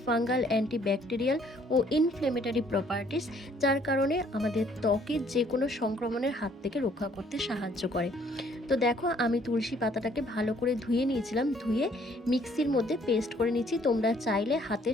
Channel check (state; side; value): normal; both; correlation 0.62